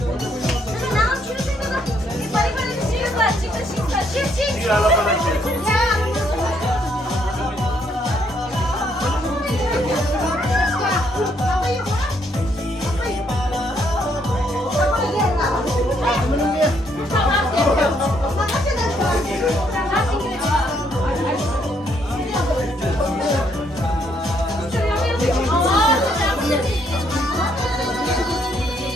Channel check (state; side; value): normal; both; correlation 0.71